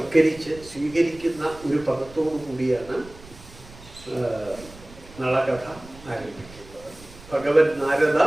സ്വീകരിക്കുന്ന ഒരു പദത്തോടു കൂടിയാണ് നളകഥ ആരംഭിക്കുന്നത്. ഭഗവൻ നാരദ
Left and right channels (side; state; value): right; noise; rumble, 20 dB below the sound